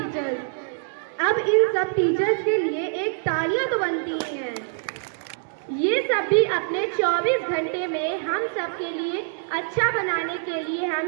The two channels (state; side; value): silent; left; digital silence